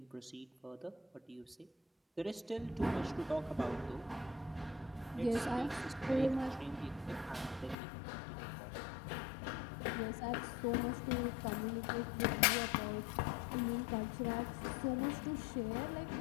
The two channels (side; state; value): right; drops out; at 7.8 s